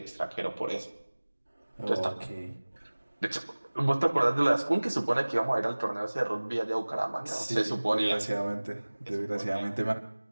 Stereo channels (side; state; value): both; inverted; correlation -1.00